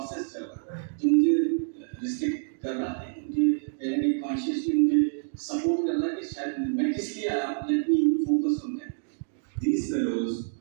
चल रहा है, जो मुझे restrict कर रहा है, मुझे कहीं ना कहीं consciously मुझे support कर रहा है कि शायद मैं किस लिए आया. Let me focus on that. These fellows,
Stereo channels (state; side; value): silent; left; digital silence